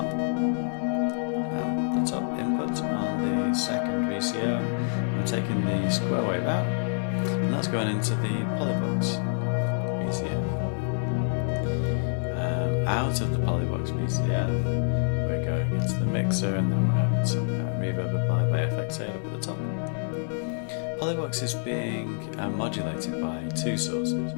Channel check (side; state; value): right; silent; digital silence